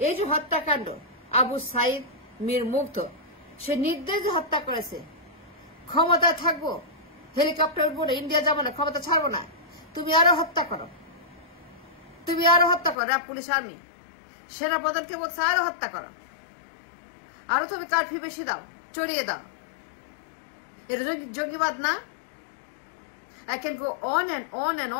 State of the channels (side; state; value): right; drops out; at 13.0 s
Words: এই যে হত্যাকাণ্ড, আবু সাইদ মীর মুগ্ধ, সে নির্দেশ হত্যা করেছে। ক্ষমতা থাকবো, হেলিকপ্টার বলে ইন্ডিয়া যাবো না, ক্ষমতা ছাড়বো না, তুমি আরো হত্যা করো, তুমি আরো হত্যা করো। র্যাব, পুলিশ, আর্মি, সেনাপ্রধানকে বলছে আরো হত্যা করো, আরো তুমি কারফিউ বেশি দাও, চড়িয়ে দাও। এটা জঙ্গিবাদ না? I can go on and on and